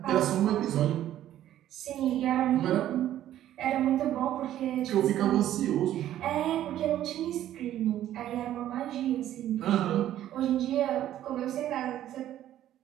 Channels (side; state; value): left; quieter; 12.3 dB